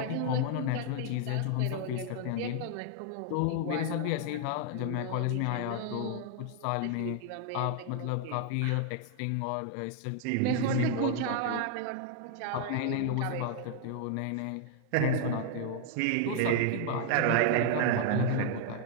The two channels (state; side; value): different; both; correlation 0.00